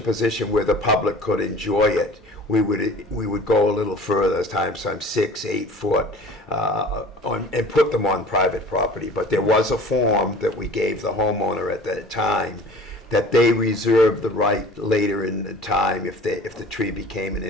position where the public could enjoy it, we would go a little further, sometimes 6, 8 foot, and put them on private property. But there was a form that we gave the homeowner at that time that they reserved the right later in the time, if the tree became an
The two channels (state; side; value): normal; both; correlation 0.44